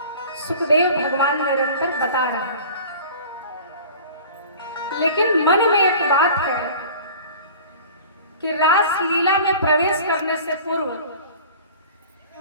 सुखदेव भगवान निरंतर बता रहे हैं। लेकिन मन में एक बात है कि रास लीला में प्रवेश करने से पूर्व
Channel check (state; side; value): inverted; both; correlation -0.42